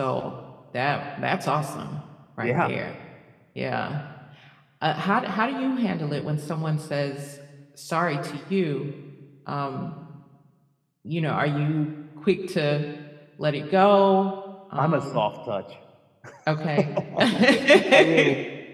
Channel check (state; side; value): identical; both; correlation 1.00